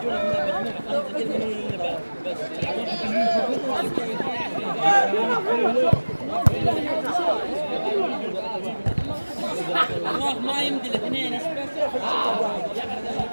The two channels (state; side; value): inverted; both; correlation -1.00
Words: الله ما يمدي الاثنين ايش بس؟